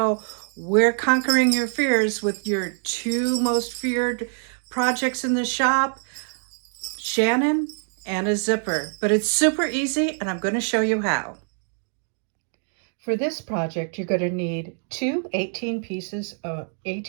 we're conquering your fears with your two most feared projects in the shop, Shannon and a zipper. But it's super easy, and I'm going to show you how. For this project, you're going to need two 18-inch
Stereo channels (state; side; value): silent; left; 62 dB below the other